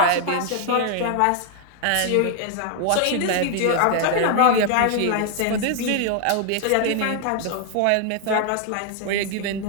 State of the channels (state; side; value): different; both; correlation 0.00